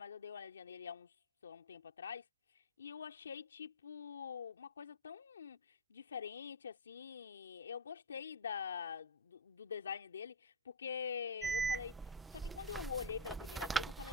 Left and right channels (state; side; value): normal; both; correlation 0.03